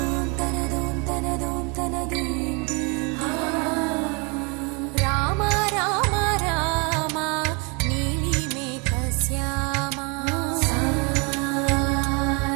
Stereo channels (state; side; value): quieter; left; 31.8 dB